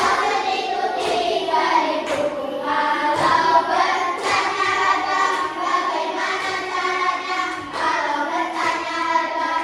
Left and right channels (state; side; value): identical; both; correlation 1.00